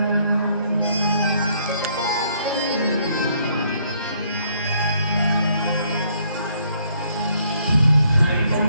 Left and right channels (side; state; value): both; inverted; correlation -0.68